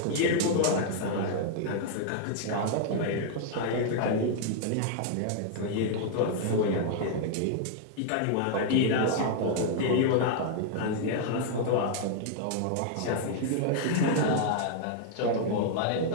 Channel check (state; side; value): different; both; correlation -0.01